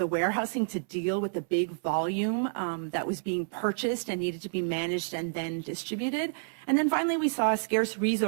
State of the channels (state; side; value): silent; left; 58 dB below the other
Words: warehousing to deal with the big volume that was being purchased and needed to be managed and then distributed. And then finally, we saw a scarce